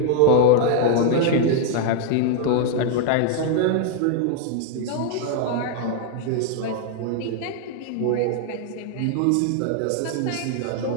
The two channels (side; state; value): both; different; correlation 0.00